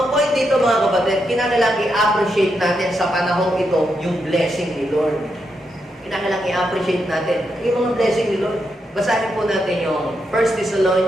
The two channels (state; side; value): normal; both; correlation 0.83